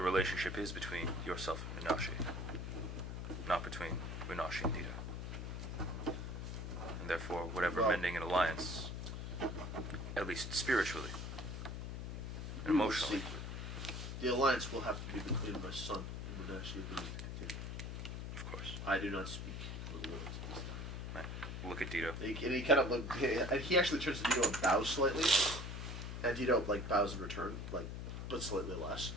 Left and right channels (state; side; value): noise; left; hum, 5 dB below the sound